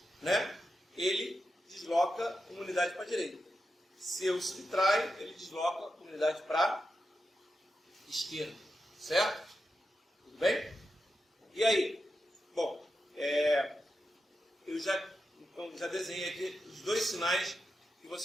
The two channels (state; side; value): normal; both; correlation 0.88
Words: né, ele desloca uma unidade para a direita. Se eu subtraio, ele desloca uma unidade para a esquerda. Certo? Tudo bem? E aí? Bom, eu já desenhei aqui os dois sinais que